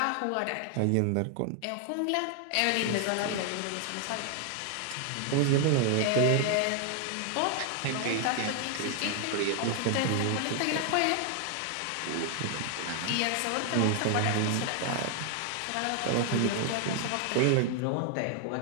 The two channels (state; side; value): different; both; correlation 0.00